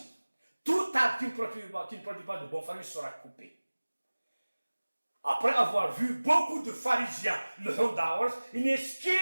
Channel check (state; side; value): inverted; both; correlation -1.00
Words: Tout arbre qui ne produit pas de bon fruit sera coupé. Après avoir vu beaucoup de pharisiens, le Hondaors, ce qui